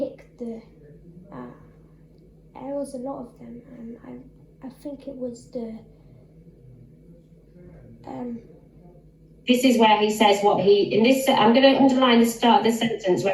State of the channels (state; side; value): identical; both; correlation 1.00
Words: the. There was a lot of them, and I think it was the. This is where he says what he in this. I'm going to underline the start of the sentence